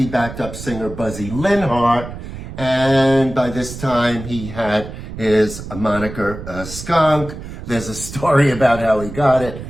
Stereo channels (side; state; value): right; noise; rumble, 11 dB below the sound